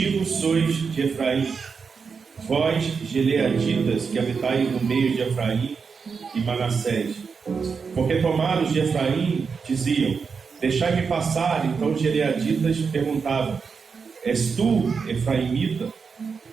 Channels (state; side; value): quieter; left; 5.5 dB